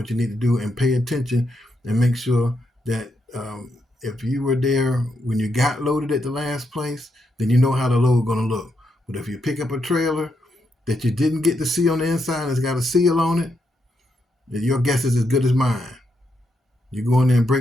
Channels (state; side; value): normal; both; correlation 0.81